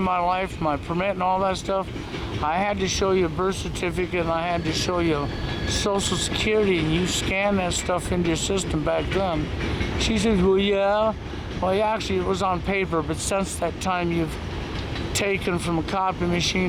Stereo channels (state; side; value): identical; both; correlation 1.00